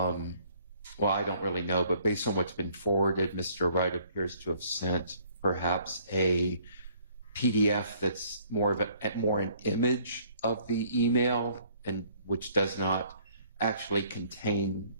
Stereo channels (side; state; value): both; inverted; correlation -0.60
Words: I don't really know, but based on what's been forwarded, Mr. Wright appears to have sent perhaps a PDF that's more an image of the email, and which does not actually contain